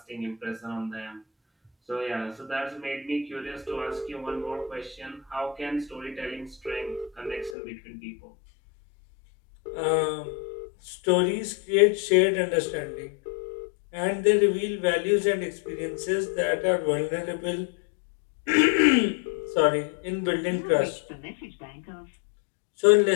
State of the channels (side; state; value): right; drops out; at 7.6 s